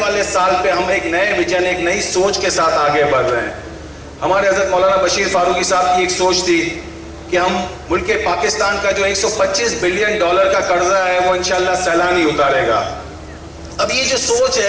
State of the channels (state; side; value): identical; both; correlation 1.00